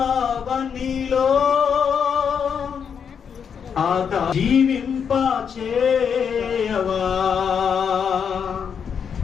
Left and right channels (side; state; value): right; quieter; 7.1 dB